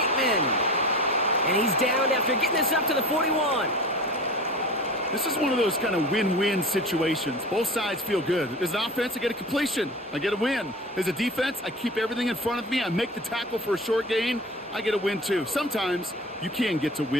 And he's down after getting this up to the 41. This is one of those kind of win-win situations. Both sides feel good. As an offense, I get a completion. I get a win. As a defense, I keep everything in front of me. I make the tackle for a short gain. I get a win, too. Sometimes you can get to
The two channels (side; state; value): both; normal; correlation 0.35